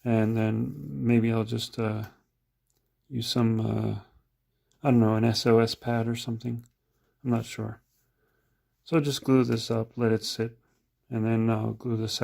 And then maybe I'll just use some, I don't know, an SOS pad or something. I'm not sure. So just glue this up, let it sit, and then I'll glue the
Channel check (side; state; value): both; identical; correlation 1.00